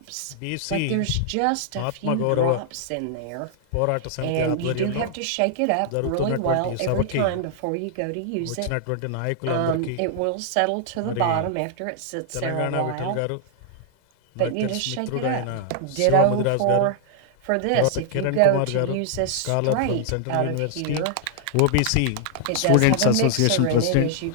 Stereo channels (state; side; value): different; both; correlation -0.01